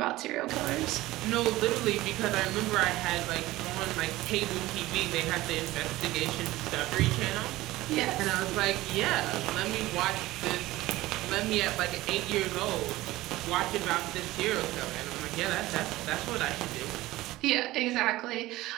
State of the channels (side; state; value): left; quieter; 17.7 dB